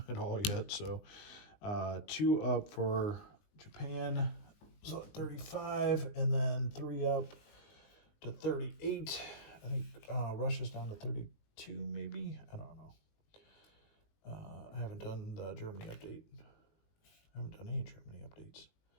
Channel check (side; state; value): right; late; 19 ms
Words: at all yet. So 2 up for Japan. So 35, and then 3 up to 38. I think Russia's down to 32, maybe. I don't know. I haven't done the Germany update. I haven't done any Germany updates.